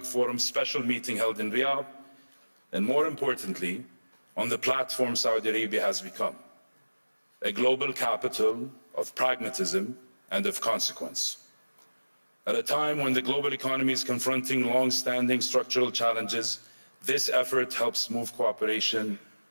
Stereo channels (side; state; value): both; inverted; correlation -1.00